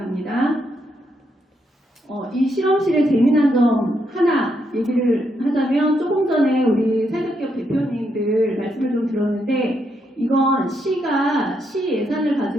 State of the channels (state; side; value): normal; both; correlation 0.79